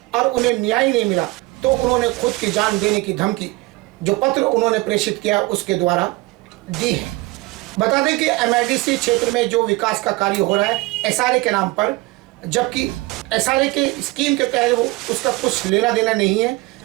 और उन्हें न्याय नहीं मिला तो उन्होंने खुद की जान देने की धमकी जो पत्र उन्होंने प्रेषित किया उसके द्वारा दी है। बता दें कि MIDC क्षेत्र में जो विकास का कार्य हो रहा है SRA के नाम पर, जबकि SRA के स्कीम के तहत वो उसका कुछ लेना देना नहीं है।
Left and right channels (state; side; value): quieter; left; 21.8 dB